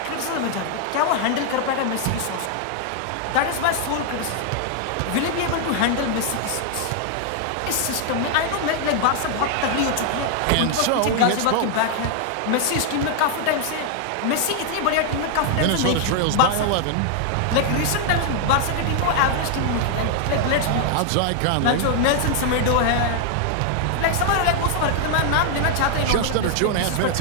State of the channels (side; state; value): both; different; correlation 0.00